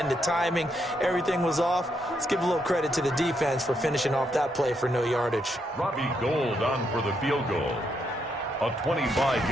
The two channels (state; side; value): normal; both; correlation 0.78